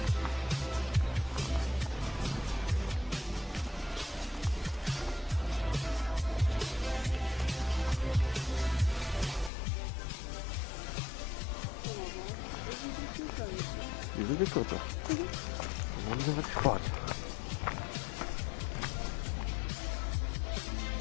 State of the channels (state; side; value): drops out; right; at 9.5 s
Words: Die sind viel kürzer. Dann haben sie was gespart.